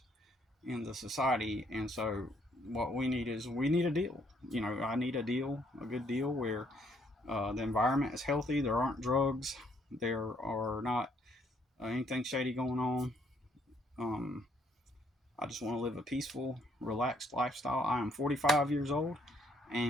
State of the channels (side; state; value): both; normal; correlation 0.68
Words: in the society. And so what we need a deal. I need a deal, a good deal where the environment is healthy. There aren't drugs. There are not anything shady going on. I just want to live a peaceful, relaxed lifestyle. I am 45 years old,